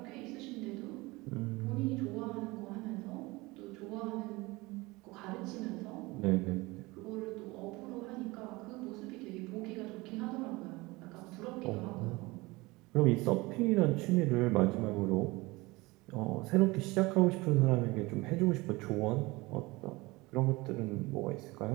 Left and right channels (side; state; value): left; quieter; 22.5 dB